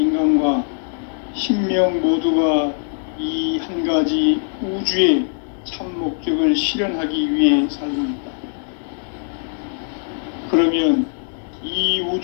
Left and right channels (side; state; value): right; silent; 58 dB below the other